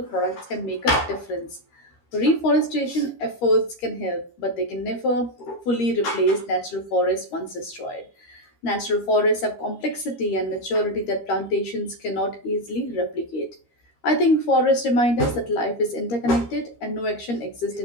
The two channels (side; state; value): right; late; 13 ms